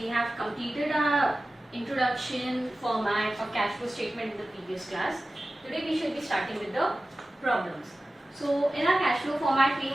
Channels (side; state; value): both; normal; correlation 0.96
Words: have completed our introduction format of cash flow statement in the previous class. Today we shall be starting with the problems. So in our cash flow format we